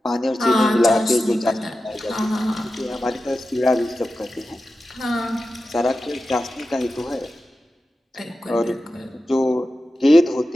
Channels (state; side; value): normal; both; correlation 0.93